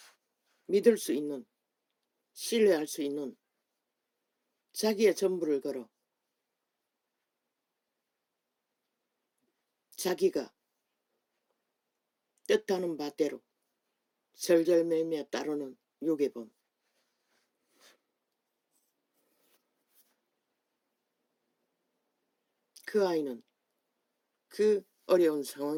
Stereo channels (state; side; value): identical; both; correlation 1.00